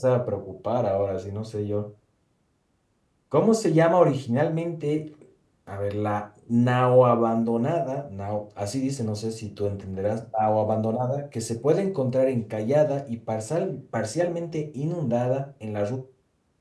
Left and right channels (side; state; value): both; identical; correlation 1.00